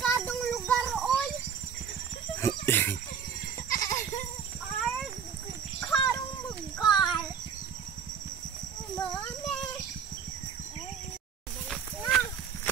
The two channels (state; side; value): quieter; left; 7.3 dB